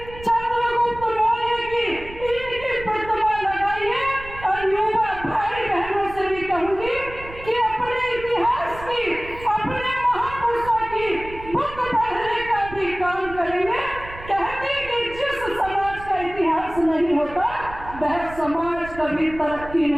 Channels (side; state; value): right; noise; rumble, 15 dB below the sound